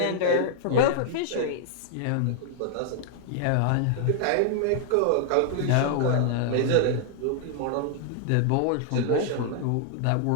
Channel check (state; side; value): different; both; correlation -0.01